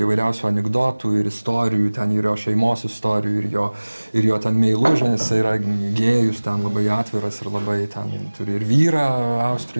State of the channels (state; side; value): inverted; both; correlation -1.00